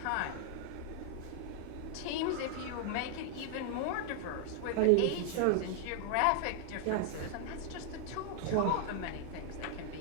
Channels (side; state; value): both; different; correlation 0.00